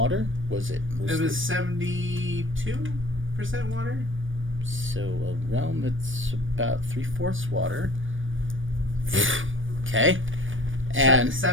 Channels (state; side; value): late; left; 0.57 ms